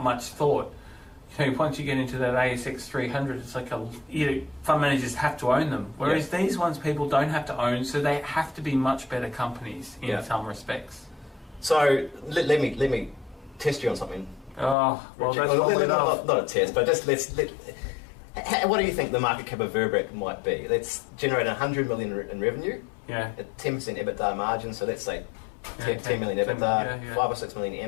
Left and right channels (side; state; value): right; drops out; at 14.8 s